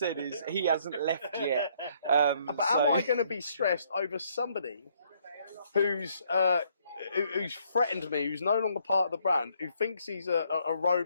is he hasn't left yet. But am I going to be stressed over somebody who's threatened me, who's no longer part of the brand, who thinks he's a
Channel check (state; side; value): inverted; both; correlation -0.68